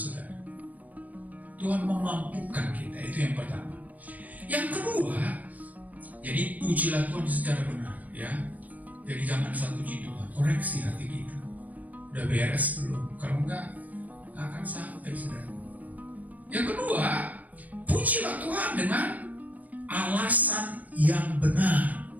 Tuhan memampukan kita, itu yang pertama. Yang kedua, jadi pujilah Tuhan secara benar, ya. Jadi jangan asal puji Tuhan, koreksi hati kita. Udah beres belum? Kalau enggak, akan sampai, saudara. Yang kedua, pujilah Tuhan dengan alasan yang benar.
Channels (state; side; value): late; left; 0.075 ms